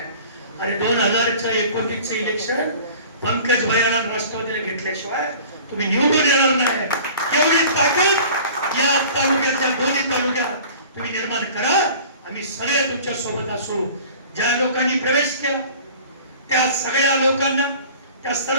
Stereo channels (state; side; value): inverted; both; correlation -0.44